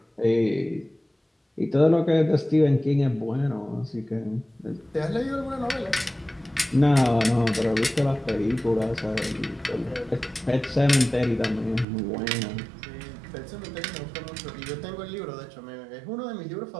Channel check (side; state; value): left; drops out; at 11.9 s